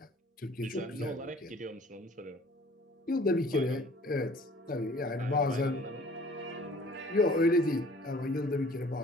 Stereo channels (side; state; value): both; normal; correlation 0.52